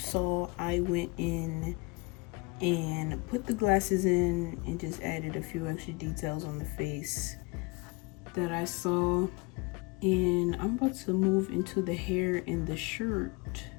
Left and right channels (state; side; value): quieter; right; 27.2 dB